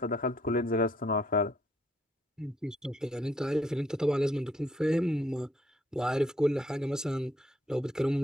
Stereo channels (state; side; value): normal; both; correlation 0.70